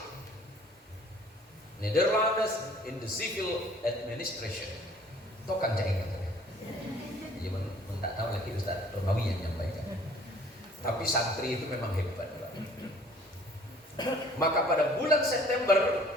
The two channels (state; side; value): normal; both; correlation 0.54